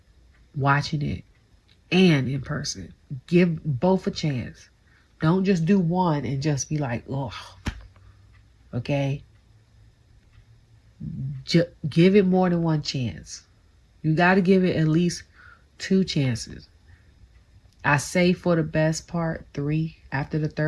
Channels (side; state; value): both; identical; correlation 1.00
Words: watching it, and in person. Give both a chance. Don't just do one and just be like, oh, okay? Give it more than one chance. You got to give it at least 2 chances. I say for the best part, 3. After the